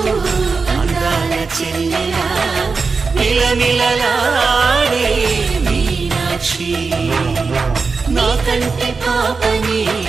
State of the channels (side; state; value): left; quieter; 4.6 dB